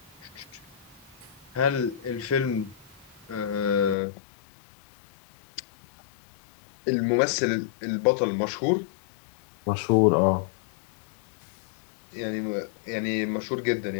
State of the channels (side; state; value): right; drops out; at 4.0 s